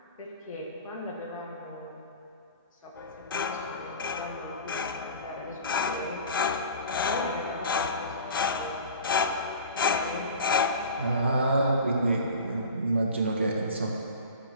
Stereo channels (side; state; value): both; inverted; correlation -0.38